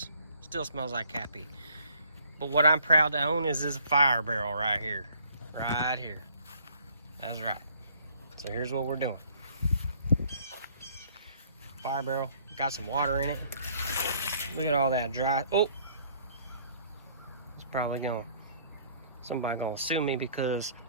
Still smells like cat pee. But what I'm proud to own is this fire barrel right here. Right here. That's right. So here's what we're doing. Fire barrel. Got some water in it. Look at all that dry. Oh! It's probably somebody gonna sue me because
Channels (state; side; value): inverted; both; correlation -0.60